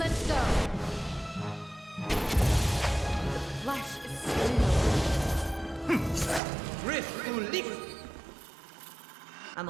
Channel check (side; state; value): left; drops out; at 6.4 s